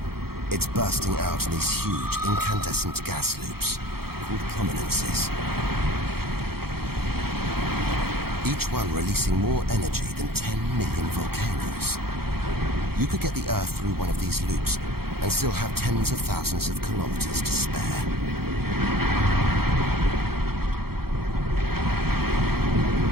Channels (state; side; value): late; left; 0.95 ms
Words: it's bursting out in these huge incandescent gas loops called prominences. Each one releasing more energy than 10 million volcanoes. You could get the Earth through one of these loops and still have tens of thousands of kilometers to spare.